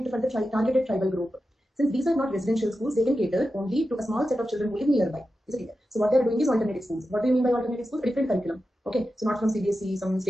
for the targeted tribal group. Since these are not residential schools, they can cater only to a small set of children who live nearby. Is it clear? So what they are doing is alternative schools. What do you mean by alternative schools? A different curriculum. Okay, so not from CBSE, some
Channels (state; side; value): normal; both; correlation 0.91